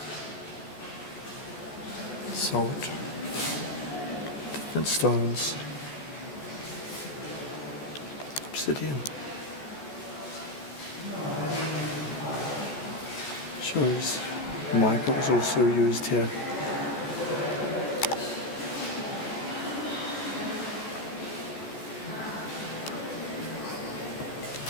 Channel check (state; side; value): late; right; 14 ms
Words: Salt. Different stones, obsidian, shows mica was also used here.